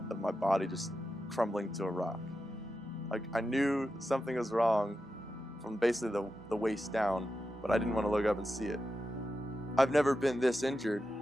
of my body just crumbling to a rock. Like, I knew something was wrong from basically the waist down, but I didn't want to look up and see it. I've never been this injured.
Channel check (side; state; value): both; normal; correlation 0.90